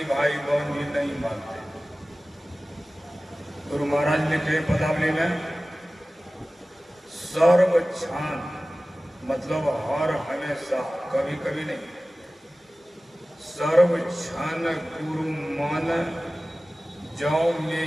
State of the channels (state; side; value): normal; both; correlation 0.97